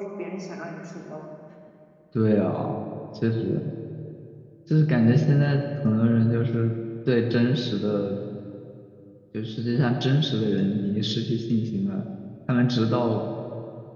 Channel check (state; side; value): identical; both; correlation 1.00